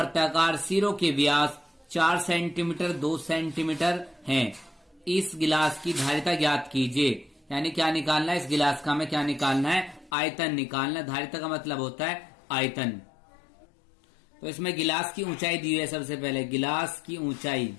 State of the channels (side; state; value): right; drops out; at 10.1 s